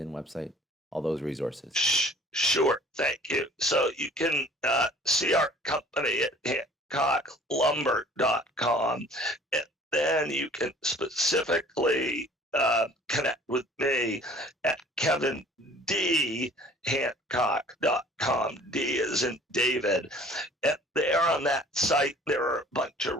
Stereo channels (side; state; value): both; normal; correlation 0.51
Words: website? All those resources. Sure. Thank you. So you can see our company at HancockLumber.com. then you can specifically connect with me at KevinDHancock.com. D is in David. And there on that site, there are a bunch of